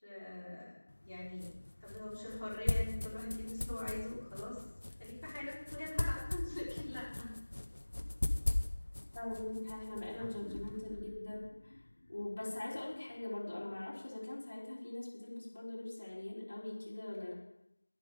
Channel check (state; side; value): inverted; both; correlation -1.00